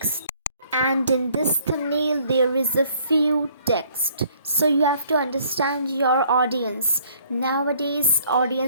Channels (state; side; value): inverted; both; correlation -0.60